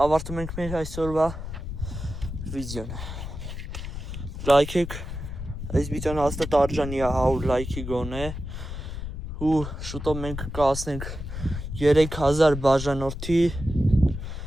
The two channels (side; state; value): left; noise; rumble, 7 dB below the sound